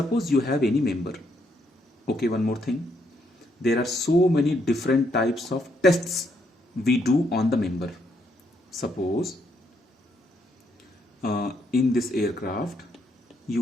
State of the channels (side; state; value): both; normal; correlation 0.74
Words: you have any member. Okay, one more thing. There are so many different types of tests we do on the member. Suppose in this aircraft